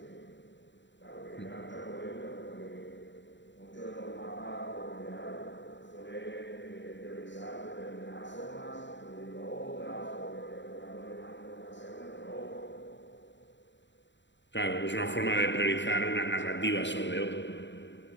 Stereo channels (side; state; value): right; late; 0.53 ms